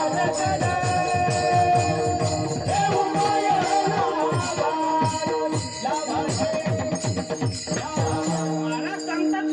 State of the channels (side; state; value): both; identical; correlation 1.00